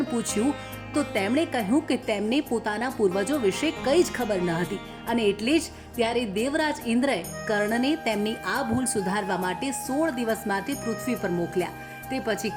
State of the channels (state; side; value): identical; both; correlation 1.00